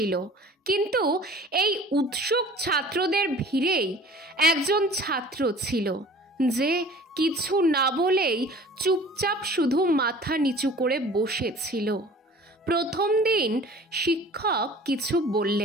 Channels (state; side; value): normal; both; correlation 0.46